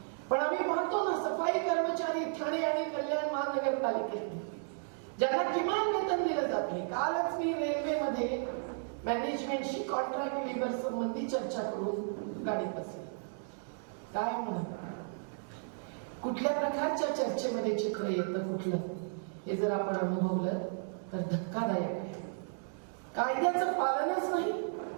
पण आम्ही पाहतो ना, सफाई कर्मचारी ठाणे आणि कल्याण महानगरपालिकेत ज्यांना किमान वेतन दिलं जात नाही. कालच मी रेल्वेमध्ये मॅनेजमेंटशी कॉन्ट्रॅक्ट लेबर संबंधी चर्चा करून गाडीत बसले. काय म्हणत, कुठल्या प्रकारच्या चर्चेमध्ये चित्र येतं कुठलं, हे जर आपण अनुभवलं तर धक्कादायक आहे. कायद्याचं पालनच नाही,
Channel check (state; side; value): silent; left; digital silence